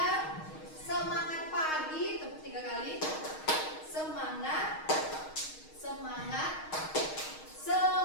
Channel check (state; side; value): late; right; 6.4 ms